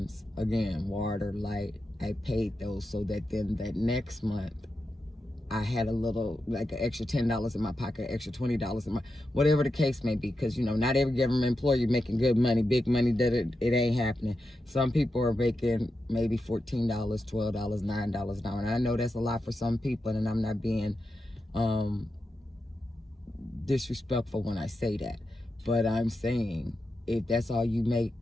again, water, light, I paid those so that then that next month I had a little, like an extra $10 in my pocket, extra $20 in my, whatever the case may be. Because, not every government employee making good money, big money, that it ain't happening. Some people are making maybe $14, $12, $9 an hour. And I know that's a lot for some people, and I'm not being disrespectful when I say that. But I'm saying, if that's all you make,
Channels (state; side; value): normal; both; correlation 0.89